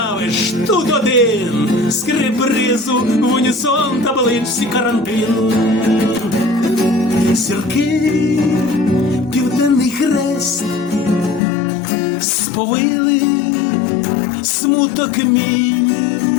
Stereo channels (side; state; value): right; drops out; at 11.4 s